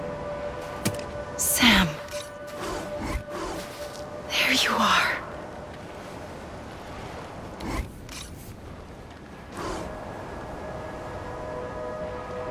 Sam. There you are.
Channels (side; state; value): both; identical; correlation 1.00